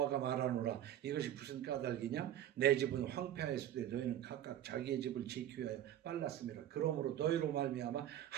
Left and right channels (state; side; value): quieter; left; 11.5 dB